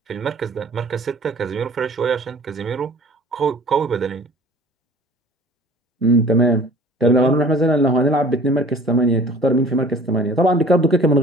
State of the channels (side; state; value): both; normal; correlation 0.48